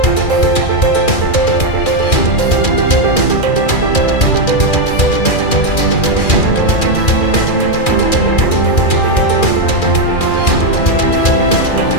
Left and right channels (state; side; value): late; right; 2.4 ms